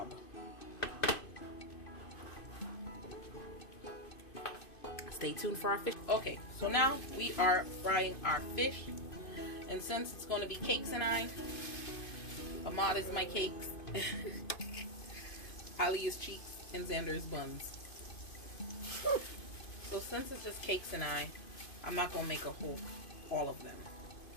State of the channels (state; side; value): late; right; 2.5 ms